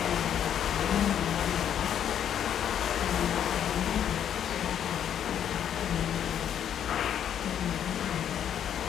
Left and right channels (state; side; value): quieter; right; 9.4 dB